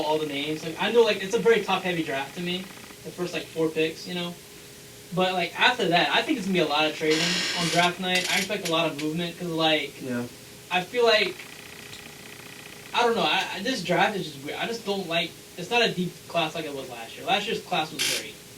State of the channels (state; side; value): identical; both; correlation 1.00